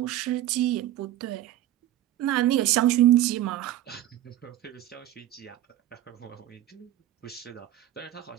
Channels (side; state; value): left; quieter; 13.6 dB